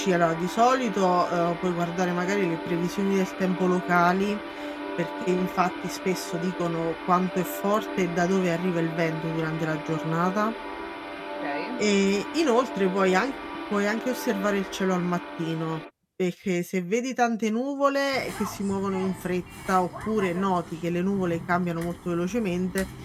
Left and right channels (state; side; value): identical; both; correlation 1.00